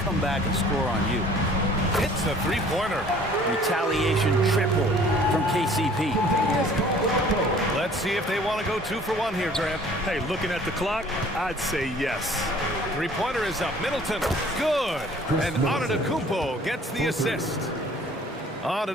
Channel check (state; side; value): normal; both; correlation 0.53